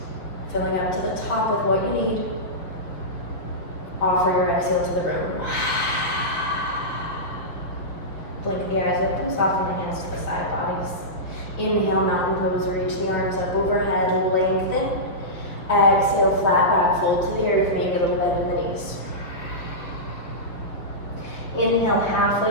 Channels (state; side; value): late; right; 5.6 ms